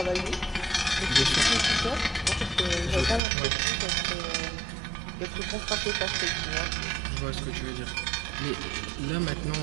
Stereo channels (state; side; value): drops out; left; at 3.2 s